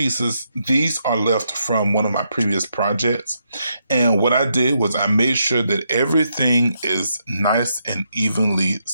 these are left from one of my previous projects. And what I did was I made sure that everything is nice and evenly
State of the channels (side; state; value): both; inverted; correlation -0.79